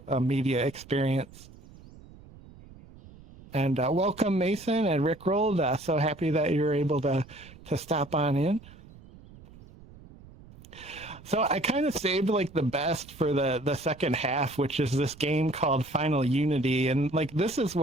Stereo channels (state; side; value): noise; right; rumble, 21 dB below the sound